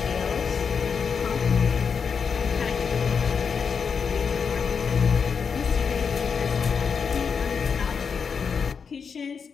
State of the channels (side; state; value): right; quieter; 6.1 dB